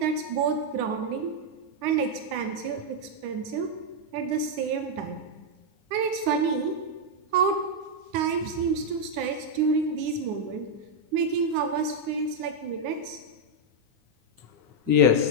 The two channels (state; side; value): late; left; 9.7 ms